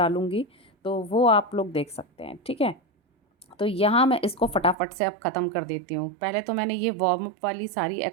तो वो आप लोग देख सकते हैं, ठीक है। तो यहाँ मैं इसको फटाफट से अब ख़त्म कर देती हूँ। पहले तो मैंने ये वार्म अप वाली सारी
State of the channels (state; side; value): drops out; left; at 4.8 s